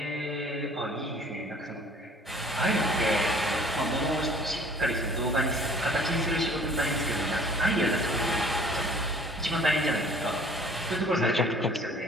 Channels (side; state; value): both; normal; correlation 0.52